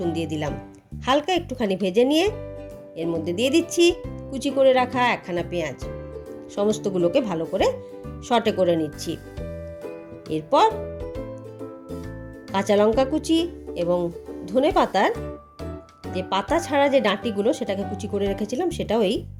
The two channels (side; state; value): both; identical; correlation 1.00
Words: দিয়ে দিলাম। হালকা একটুখানি ভেজে নিয়ে এর মধ্যে দিয়ে দিচ্ছি কুচি করে রাখা একখানা পেঁয়াজ। সমস্তগুলোকে ভালো করে সটে করে নিচ্ছি। এরপর কাঁচা লঙ্কা কুচি এবং ধনে পাতার যে পাতা ছাড়া যে ডাঁটিগুলো সেটাকে কুচি করে রেখেছিলাম, সেটাও এই